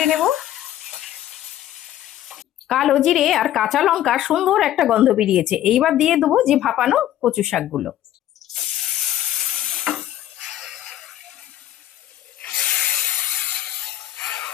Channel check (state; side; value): quieter; right; 12.5 dB